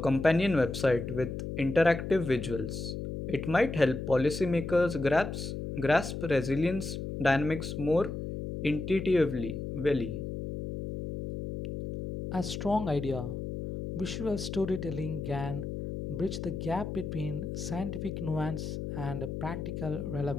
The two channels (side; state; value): left; noise; hum, 5 dB below the sound